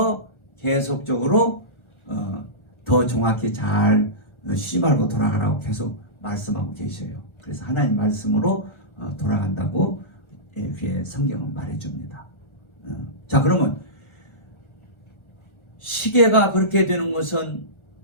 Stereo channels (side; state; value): right; late; 1.4 ms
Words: 계속적으로 더 정확히 잘 쉬지 말고 돌아가라고 계속 말씀하고 계셔요. 그래서 하나님 말씀으로 돌아간다고 그의 성경은 말해줍니다. 자, 그러면 시계가 그렇게 되는 것은